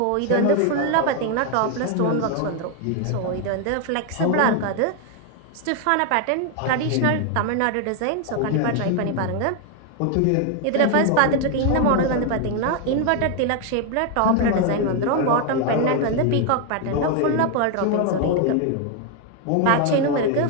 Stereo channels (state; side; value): different; both; correlation 0.01